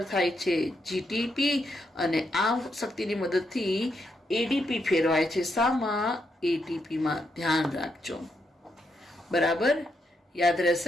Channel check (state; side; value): normal; both; correlation 0.80